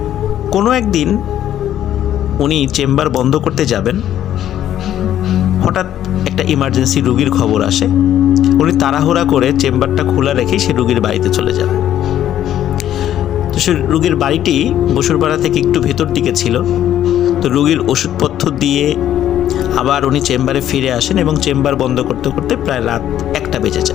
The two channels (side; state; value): right; quieter; 11.4 dB